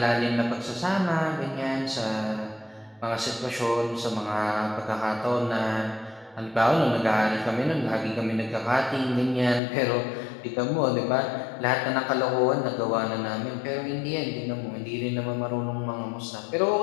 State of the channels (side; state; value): right; drops out; at 9.6 s